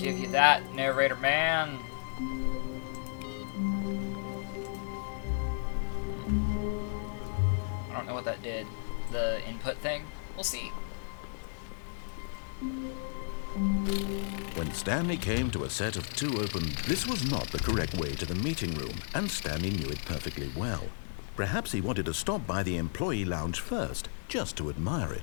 you that, narrator man. I don't know what that did. The input thing? We'll see. When Stanley came to a set of two open... This was not the correct way to the meeting room, and Stanley knew it perfectly well. Perhaps he wanted to stop by the employee lounge first, just to admire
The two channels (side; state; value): right; silent; digital silence